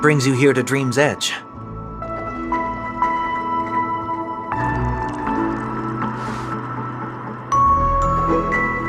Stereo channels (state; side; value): identical; both; correlation 1.00